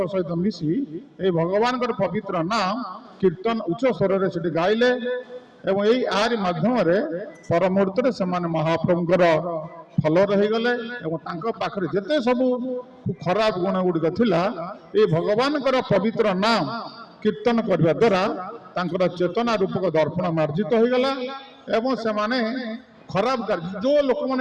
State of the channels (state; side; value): identical; both; correlation 1.00